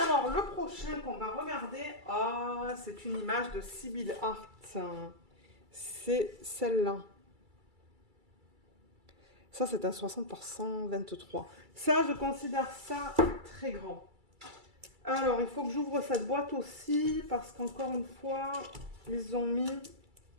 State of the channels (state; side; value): late; left; 2.3 ms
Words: le prochain qu'on va regarder, c'est une image de Sibyl Art. C'est celle-là. Ça, c'est un 60 par 123. Ça, je considère ça très grand. Alors, il faut que j'ouvre cette boîte aussi, parce qu'encore une fois, ils ont mis